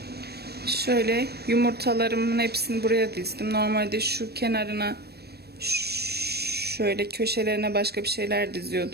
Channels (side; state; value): left; late; 0.47 ms